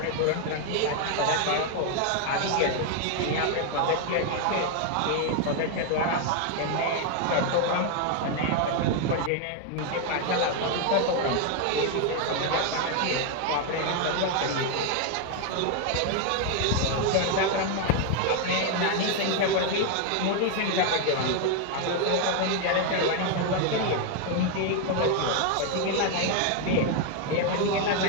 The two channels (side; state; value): both; different; correlation 0.01